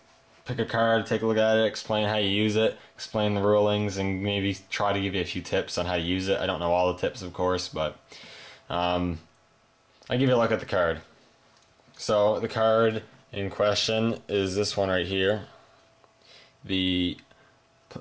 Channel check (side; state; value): both; identical; correlation 1.00